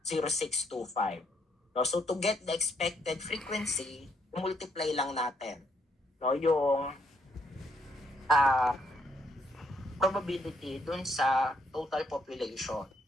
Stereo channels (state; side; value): normal; both; correlation 0.73